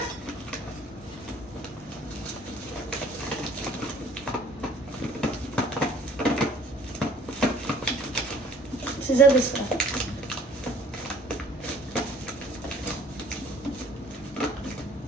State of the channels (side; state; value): both; normal; correlation 0.55